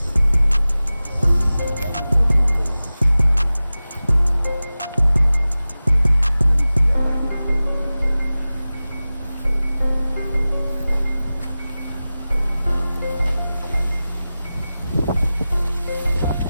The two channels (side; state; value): both; inverted; correlation -0.96